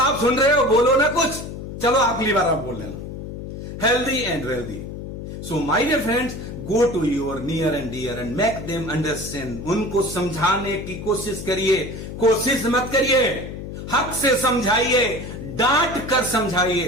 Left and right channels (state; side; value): noise; left; hum, 9 dB below the sound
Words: सुन रहे हो, बोलो ना कुछ। चलो अगली बार आप बोल लेना, healthy and wealthy. So my dear friends, go to your near and dear and make them understand. उनको समझाने की कोशिश करिए, कोशिश मत करिए, हक से समझाइए, डांट कर